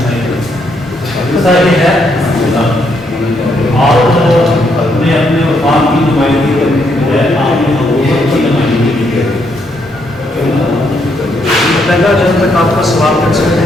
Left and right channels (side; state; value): both; normal; correlation 0.75